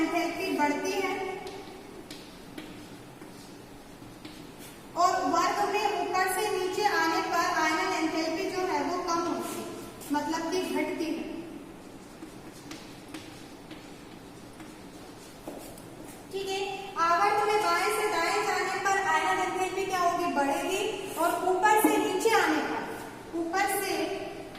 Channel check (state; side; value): identical; both; correlation 1.00